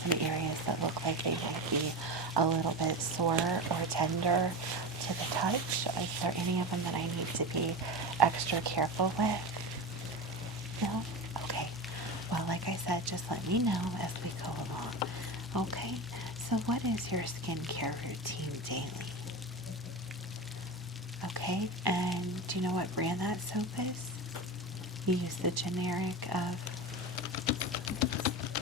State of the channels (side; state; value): both; normal; correlation 0.24